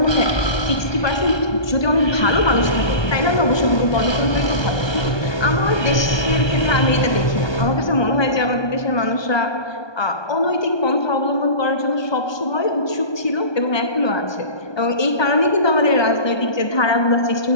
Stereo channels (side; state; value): right; late; 1.2 ms